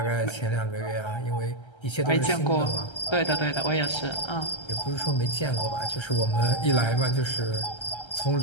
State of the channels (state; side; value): late; right; 1.3 ms